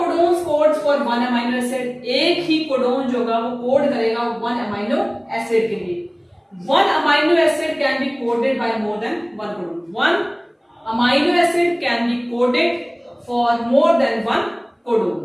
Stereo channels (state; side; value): identical; both; correlation 1.00